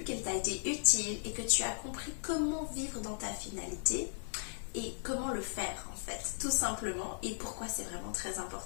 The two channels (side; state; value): right; silent; 53 dB below the other